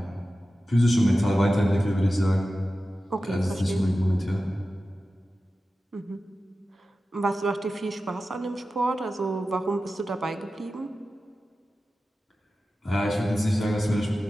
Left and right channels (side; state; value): both; normal; correlation 0.94